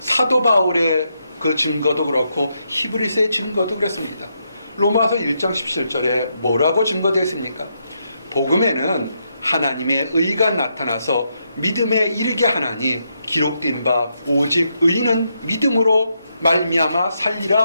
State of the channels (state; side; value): inverted; both; correlation -0.80